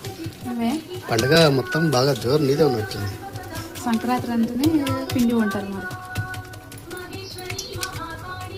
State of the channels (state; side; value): identical; both; correlation 1.00